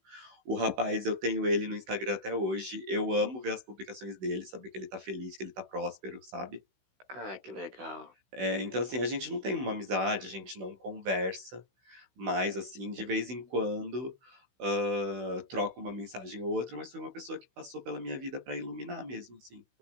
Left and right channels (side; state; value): left; late; 16 ms